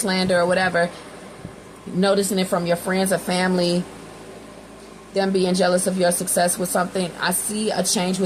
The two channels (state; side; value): identical; both; correlation 1.00